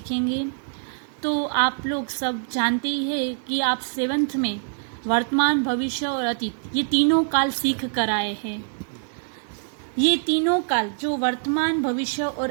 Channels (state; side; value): silent; left; 62 dB below the other